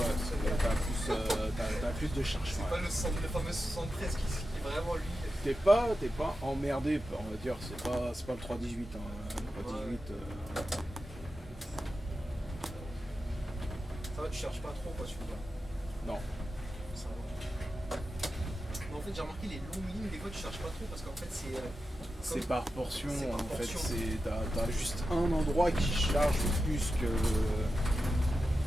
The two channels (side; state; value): both; normal; correlation 0.91